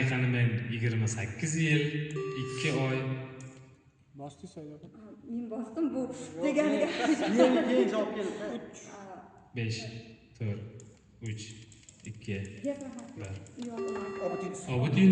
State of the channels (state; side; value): identical; both; correlation 1.00